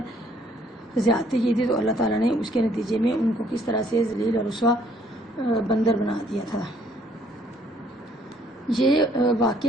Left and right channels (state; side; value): normal; both; correlation 0.63